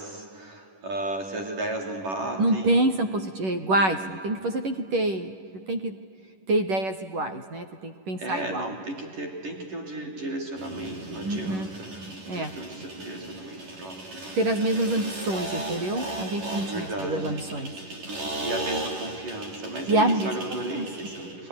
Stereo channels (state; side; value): late; left; 11 ms